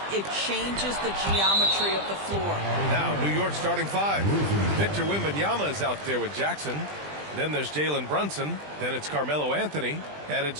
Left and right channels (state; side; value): late; left; 20 ms